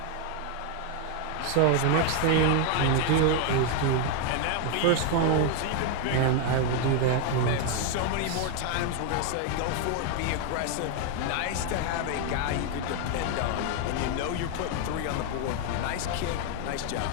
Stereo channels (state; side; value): different; both; correlation 0.00